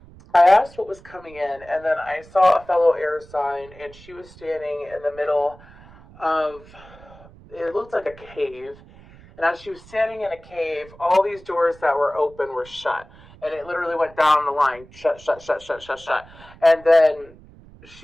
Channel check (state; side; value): noise; right; rumble, 22 dB below the sound